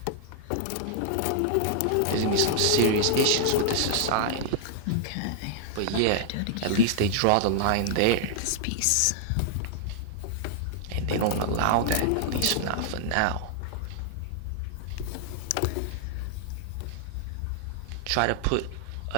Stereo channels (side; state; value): both; different; correlation -0.01